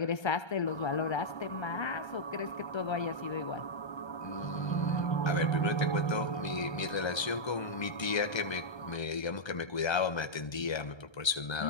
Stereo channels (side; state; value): right; late; 1.3 ms